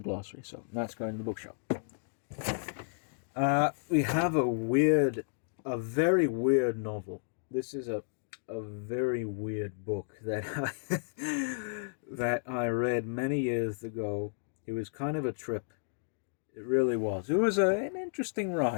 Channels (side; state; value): right; silent; digital silence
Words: glossary, so that's going to the bookshop. We have a very weird novel. This is a very weird book that I read many years ago. It was kind of a trip. It really was. It was an interesting